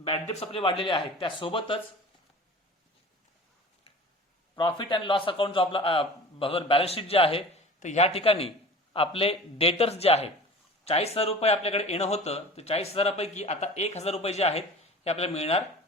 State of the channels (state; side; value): normal; both; correlation 0.40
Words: डेट्स आपले वाढलेले आहेत, त्यासोबतच प्रॉफिट अँड लॉस अकाउंट जो आपला बॅलन्स शीट जे आहे तर ह्या ठिकाणी आपले डेटर्स जे आहेत 40,000 रुपये आपल्याकडे येणं होतं, तर 40,000 पैकी आता 1000 रुपये जे आहेत हे आपल्याला मिळणार